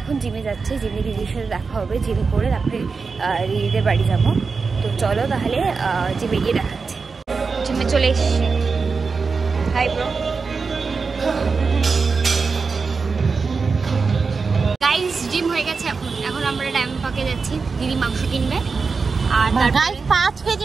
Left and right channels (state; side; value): quieter; left; 4.8 dB